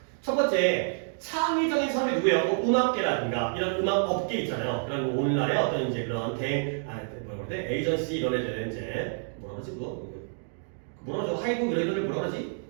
첫 번째, 창의적인 사람이 누구예요? 뭐 음악계라든가 이런 음악 업계 있잖아요. 그런 오늘날의 어떤 이제 그런 뭐라 그러지? 에이전시 이런 애들 이제 뭐라 그러지 그거? 뭐라 그러죠? 하이브 이런 애들을 뭐라 그러지?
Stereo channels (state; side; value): silent; left; digital silence